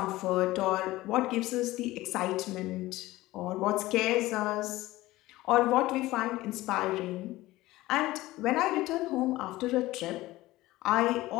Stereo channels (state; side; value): quieter; right; 17.9 dB